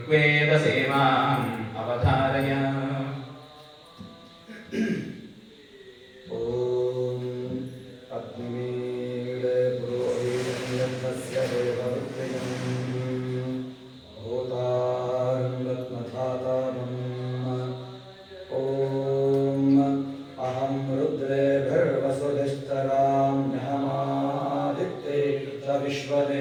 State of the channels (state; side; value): identical; both; correlation 1.00